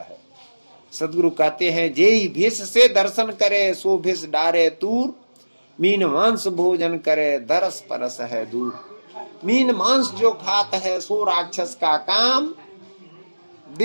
सदगुरु कहते हैं जेई भेष से दर्शन करे सो भेष डारे दूर, मीन मांस भोजन करे दरस परस है दूर। मीन मांस जो खात है सो राक्षस का काम,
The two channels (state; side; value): inverted; both; correlation -1.00